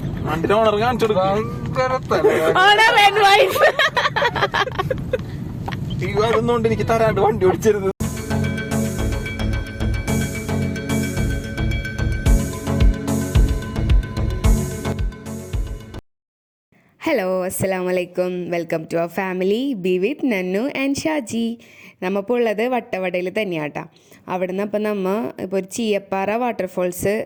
ഓണർ കാണിച്ചു അതൊന്നുകൊണ്ട് എനിക്ക് തരാണ്ട് വണ്ടി ഓടിച്ചരുത്. ഹലോ, അസ്സലാമലൈക്കും. Welcome to our family be with Nannu and Shaji. നമ്മളിപ്പോൾ ഉള്ളത് വട്ടവടയിൽ തന്നെയാട്ടാ. അവിടെ നിന്ന് അപ്പം ഇപ്പോൾ ഒരു ചീയപ്പാറ വാട്ടർഫോൾസ്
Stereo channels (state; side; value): identical; both; correlation 1.00